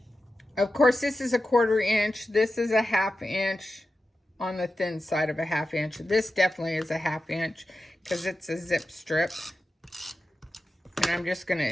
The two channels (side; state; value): both; normal; correlation 0.92